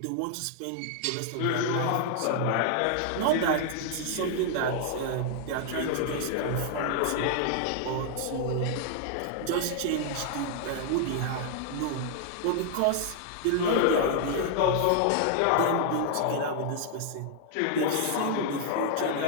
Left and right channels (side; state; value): both; different; correlation 0.00